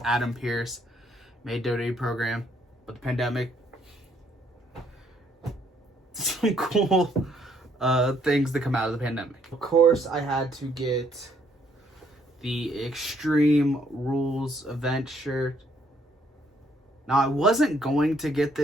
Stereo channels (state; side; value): normal; both; correlation 0.68